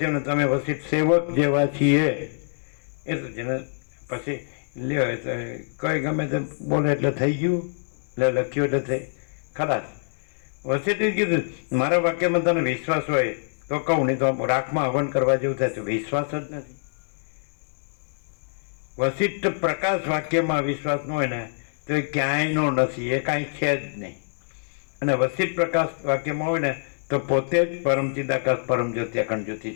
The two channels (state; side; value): silent; right; digital silence